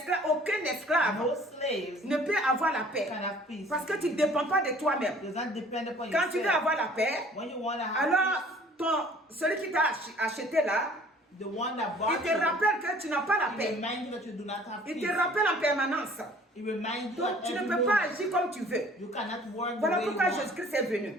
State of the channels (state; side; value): normal; both; correlation 0.53